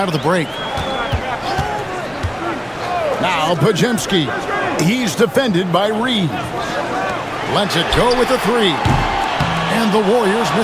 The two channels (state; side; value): identical; both; correlation 1.00